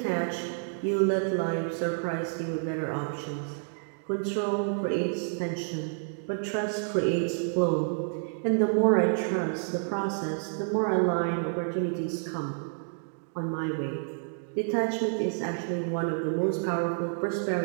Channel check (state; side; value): silent; left; digital silence